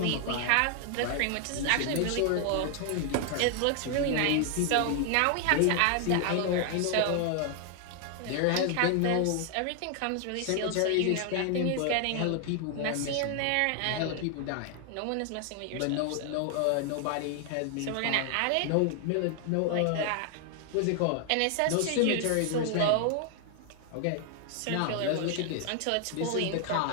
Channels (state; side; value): different; both; correlation 0.00